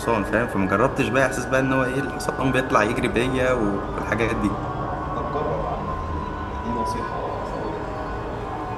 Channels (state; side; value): identical; both; correlation 1.00